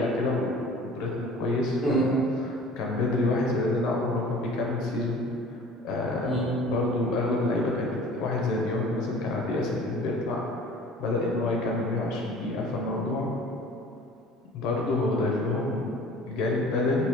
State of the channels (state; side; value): normal; both; correlation 0.46